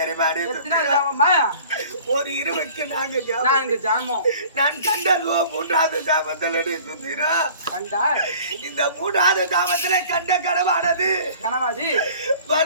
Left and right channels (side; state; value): both; inverted; correlation -0.48